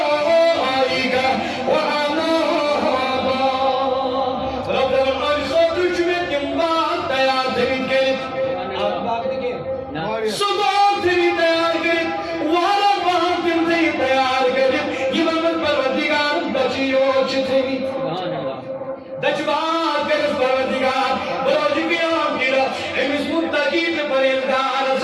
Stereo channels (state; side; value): identical; both; correlation 1.00